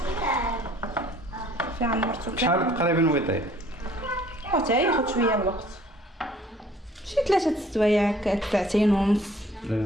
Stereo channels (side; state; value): both; normal; correlation 0.56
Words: في عمرتو شحال تقريبا ويطيب؟ حتى ياخذ شويه الوقت، شي 3 سوايع هكا، 2 ونص.